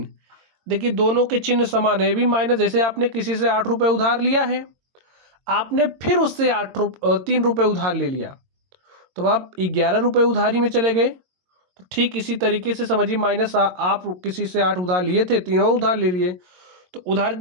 देखिए दोनों के चिन्ह समान है, भी माइनस, जैसे आपने किसी से 8 रुपये उधार लिया है, आपने फिर उससे 3 रुपये उधार ले लिया, तो आप 11 रुपये उधारी में चले गए। तो ठीक इसी तरीके से समझिए, माइनस आप किसी से 8 उधार लिए थे, तीनों उधार ले लिए, तो उधार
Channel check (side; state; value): left; late; 22 ms